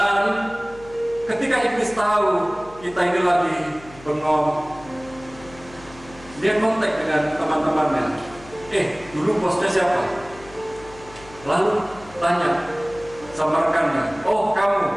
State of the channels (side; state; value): left; noise; hum, 21 dB below the sound